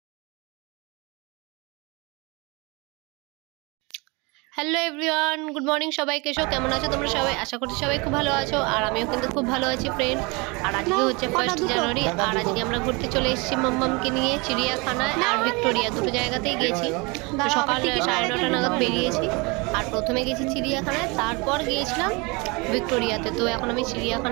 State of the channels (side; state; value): left; quieter; 27.7 dB